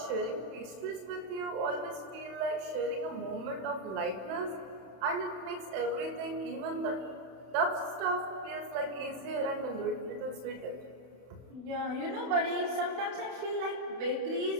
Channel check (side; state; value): left; late; 31 ms